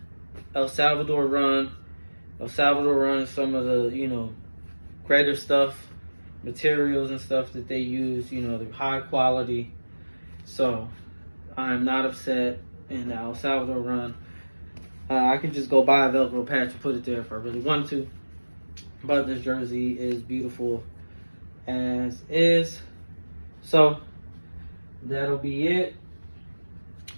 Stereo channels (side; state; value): both; inverted; correlation -1.00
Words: El Salvador run is some of the, you know, greater stuff, materials and stuff that they use, you know, the high quality. So I'm not upset in the El Salvador run. I could just go buy a Velcro patch and put it there if I really want to. But this jersey is beautiful as is. So that'll be it.